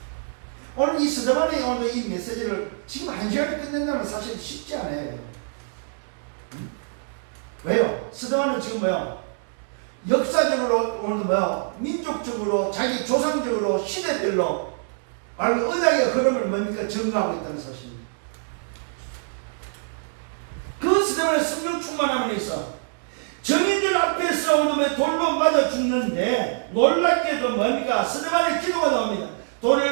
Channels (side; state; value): left; silent; digital silence